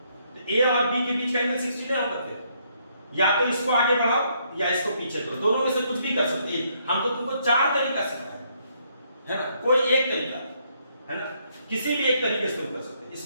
तो ए और बी के बीच का एंगल 60 नहीं होगा। फिर या तो इसको आगे बढ़ाओ या इसको पीछे करो, दोनों में से कुछ भी कर सकते हैं। हम तो तुमको 4 तरीका सिखाए है ना, कोई एक तरीका है ना, किसी भी एक तरीके से तुम कर सकते हैं।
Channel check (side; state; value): both; inverted; correlation -0.71